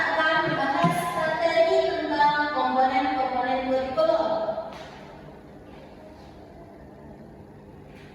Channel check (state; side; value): identical; both; correlation 1.00